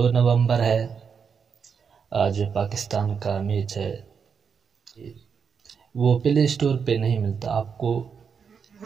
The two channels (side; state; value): left; quieter; 6.4 dB